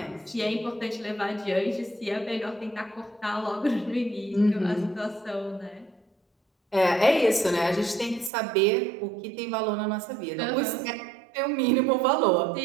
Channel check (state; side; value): drops out; left; at 8.3 s